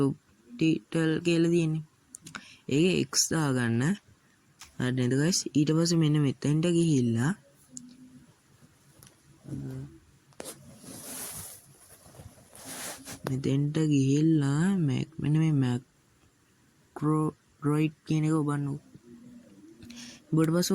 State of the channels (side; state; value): both; identical; correlation 1.00